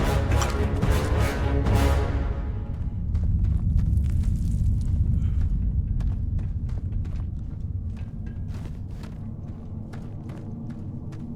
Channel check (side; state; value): both; identical; correlation 1.00